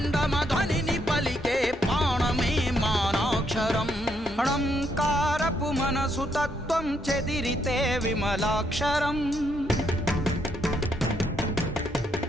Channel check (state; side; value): normal; both; correlation 0.75